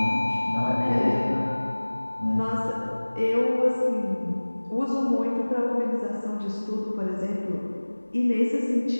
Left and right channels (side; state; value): both; inverted; correlation -1.00